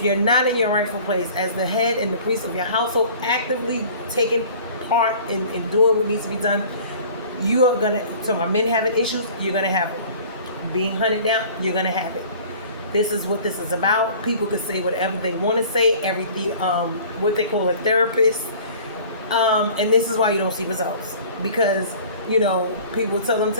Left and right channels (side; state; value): both; inverted; correlation -0.47